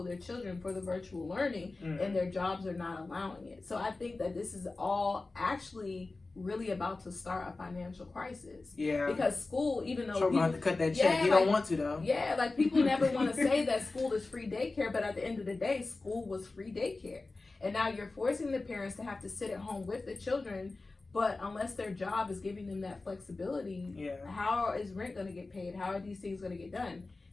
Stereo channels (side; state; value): right; quieter; 3.4 dB